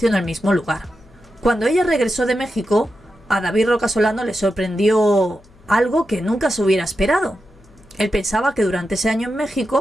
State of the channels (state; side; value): noise; left; hum, 27 dB below the sound